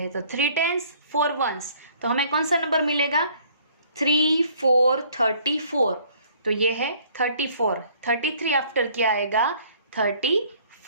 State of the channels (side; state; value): both; inverted; correlation -0.58